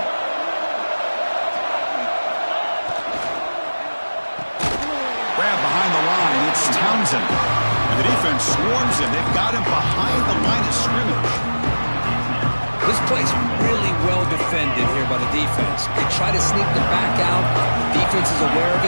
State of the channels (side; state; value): both; inverted; correlation -1.00